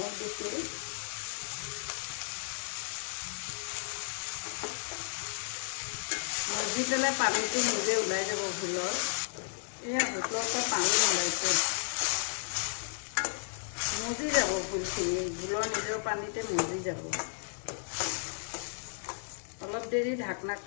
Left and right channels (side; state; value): right; silent; digital silence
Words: দিছোঁ। মজি পেলাই পানীটো নিজে ওলাই যাব ভোলৰ। এয়া ভোলৰ পৰা পানী ওলাইছে, মজি যাব ভোলখিনি। ভোলৰ নিজৰ পানীতে মজি যাব। অলপ দেৰি